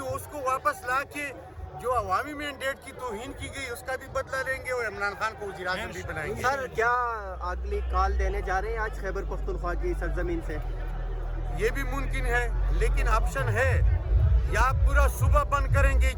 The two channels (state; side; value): identical; both; correlation 1.00